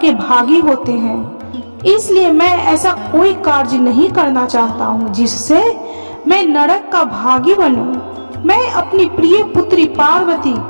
भागी होते हैं। इसलिए मैं ऐसा कोई कार्य नहीं करना चाहता हूँ जिससे मैं नरक का भागी बनूं। मैं अपनी प्रिय पुत्री पार्वती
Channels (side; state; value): both; inverted; correlation -1.00